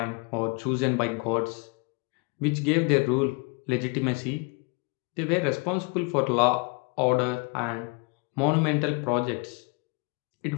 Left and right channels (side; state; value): right; quieter; 31.1 dB